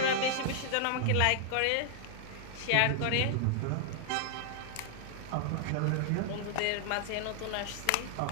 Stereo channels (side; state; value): both; different; correlation -0.01